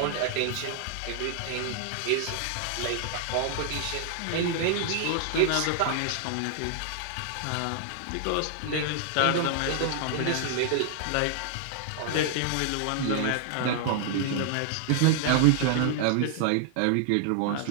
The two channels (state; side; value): different; both; correlation 0.00